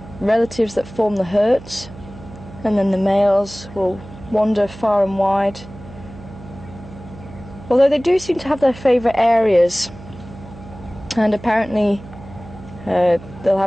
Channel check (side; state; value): right; noise; hum, 17 dB below the sound